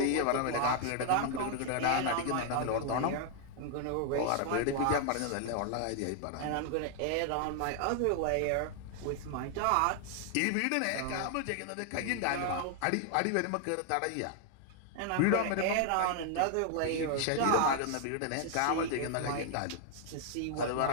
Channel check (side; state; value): both; different; correlation 0.00